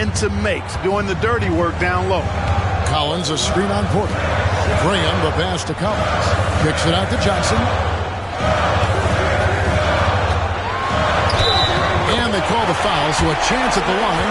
makes. Doing the dirty work down low. Collins a screen on Porter. Graham the pass to Collins. Kicks it out to Johnson. And they call the foul, so a chance at the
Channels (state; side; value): identical; both; correlation 1.00